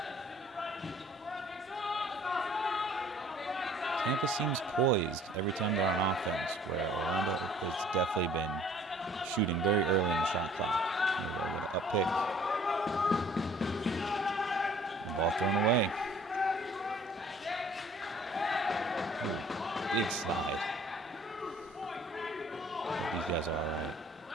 Tampa seems poised every time they're on offense, where Orlando has definitely been shooting very early in the shot clock. Here we go with an up pick. The ball thrown away. Ooh, big slide. Hope these guys are all right.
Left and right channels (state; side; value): normal; both; correlation 0.54